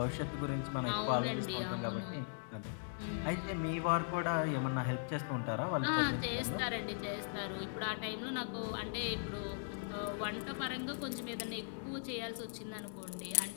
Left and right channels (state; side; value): silent; right; digital silence